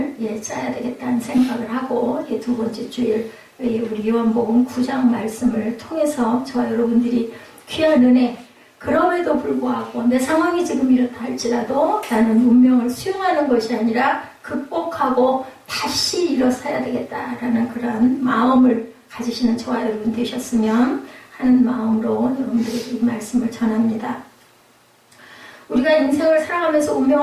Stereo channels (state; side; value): identical; both; correlation 1.00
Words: 짜야 되겠다는 생각을 하고 두 번째 주일 우리 요한복음 9장 말씀을 통해서 저와 여러분들이 귀한 은혜 그럼에도 불구하고 내 상황이 지금 이렇다 할지라도 나는 운명을 수용하는 것이 아니라 극복하고 다시 일어서야 되겠다라는 그런 마음을 가지시는 저와 여러분 되셨으면 하는 마음으로 여러분들에게 이 말씀을 전합니다. 우리가 인생을 살아가면서